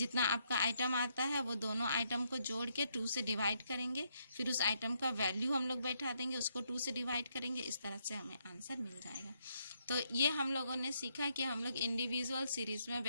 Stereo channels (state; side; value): inverted; both; correlation -0.76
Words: आपका आइटम आता है वो दोनों आइटम को जोड़ के 2 से डिवाइड करेंगे, फिर उस आइटम का वैल्यू हम लोग बैठा देंगे, उसको 2 से डिवाइड करेंगे, इस तरह से हमें आंसर मिल जाएगा। तो ये हम लोगों ने सीखा कि हम लोग इंडिविजुअल सीरीज में